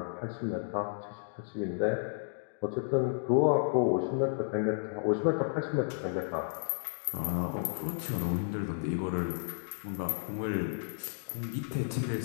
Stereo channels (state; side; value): silent; right; digital silence